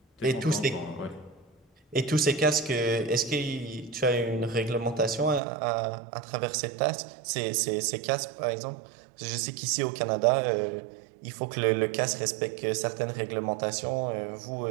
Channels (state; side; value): drops out; left; at 5.4 s